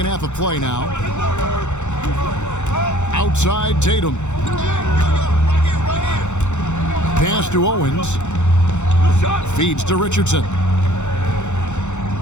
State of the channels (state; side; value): late; right; 0.83 ms